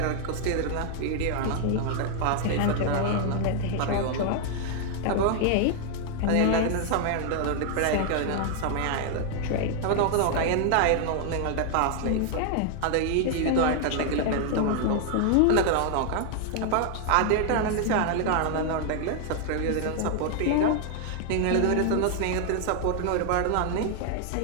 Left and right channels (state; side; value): different; both; correlation 0.00